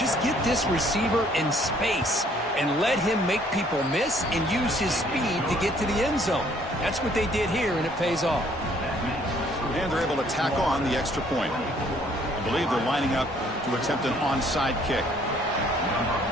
get this receiver in space and let him make people miss and use his speed to get to the end zone. That's what they did here, and it pays off. And they're able to tack on the extra point. I believe they're lining up to attempt an onside kick.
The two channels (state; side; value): normal; both; correlation 0.62